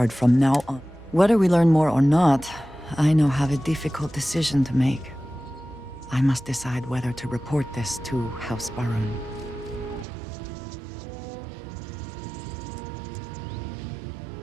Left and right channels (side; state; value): left; drops out; at 10.1 s